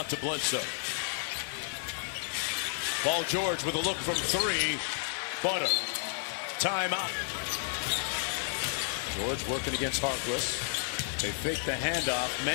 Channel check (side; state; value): right; silent; digital silence